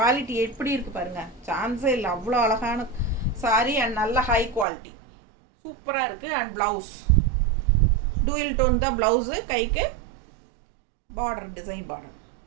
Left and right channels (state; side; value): drops out; left; at 4.7 s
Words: எப்படி இருக்குது பாருங்கள், சான்ஸே இல்லை. அவ்வளோ அழகான சாரீ அண்ட் நல்ல ஹை குவாலிட்டி, சூப்பராக இருக்குது. அண்ட் ப்ளவுஸ் டூயல் டோன் தான் ப்ளவுஸு, கைக்கு பார்டர் டிசைன் பார்டர்